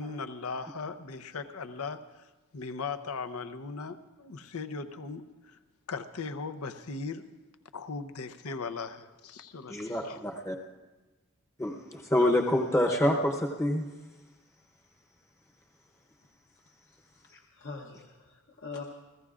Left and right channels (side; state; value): both; normal; correlation 0.62